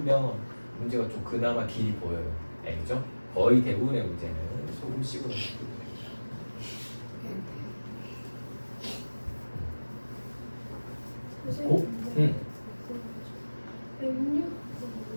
문제가 좀 그나마 길이 보여요. 알죠? 거의 대부분의 문제는 소금식으로.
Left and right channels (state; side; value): inverted; both; correlation -1.00